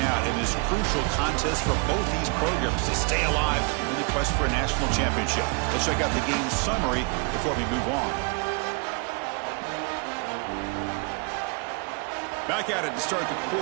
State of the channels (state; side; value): quieter; left; 35.5 dB